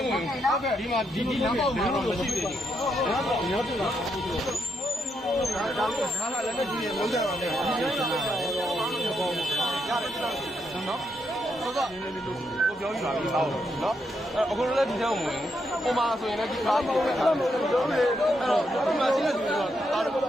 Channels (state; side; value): normal; both; correlation 0.80